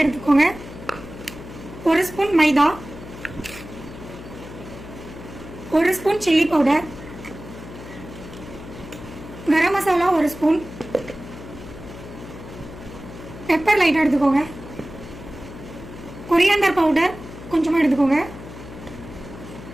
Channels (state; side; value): noise; left; hum, 14 dB below the sound